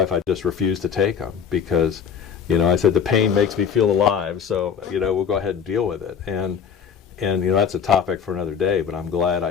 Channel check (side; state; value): right; quieter; 7.3 dB